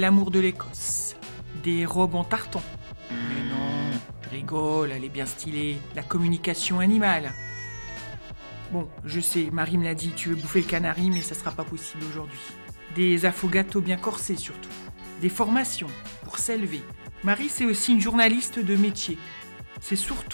de l'Écosse. Des robes en tartan. Mais non, je rigole, elle est bien stylée. La communication animale. Bon, je sais, Marie me l'a dit, tu veux bouffer le canari, mais ça sera pas possible aujourd'hui. Des affogatos bien corsés surtout. Des formations pour s'élever. Marie, c'est aussi une journaliste de métier. C'est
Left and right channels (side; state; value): both; inverted; correlation -1.00